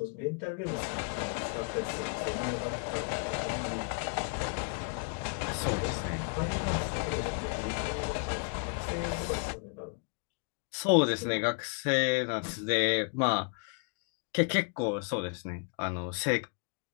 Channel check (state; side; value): quieter; right; 38.4 dB